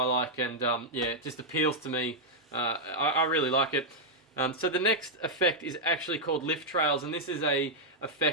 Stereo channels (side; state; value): both; normal; correlation -0.04